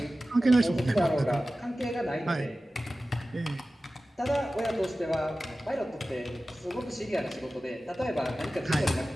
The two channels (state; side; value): normal; both; correlation 0.95